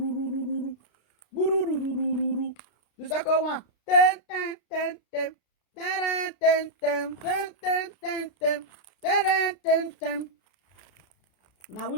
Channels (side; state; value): right; late; 33 ms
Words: guru. The second one, ten. Now